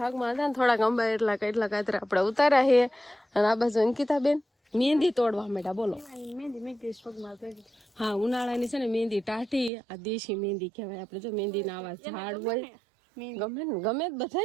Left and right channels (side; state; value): left; drops out; at 9.7 s